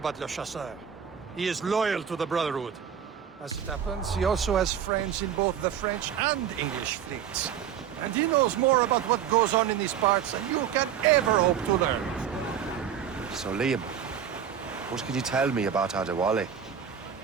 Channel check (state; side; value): quieter; left; 8.7 dB